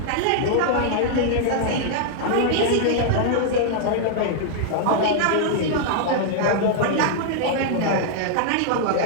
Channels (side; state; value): both; different; correlation -0.01